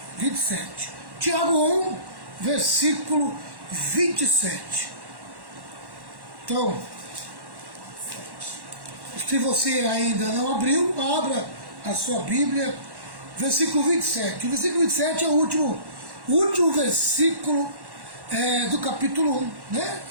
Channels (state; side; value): late; left; 1.1 ms